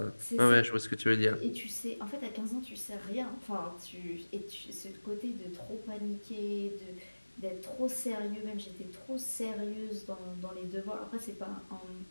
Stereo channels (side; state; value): both; inverted; correlation -1.00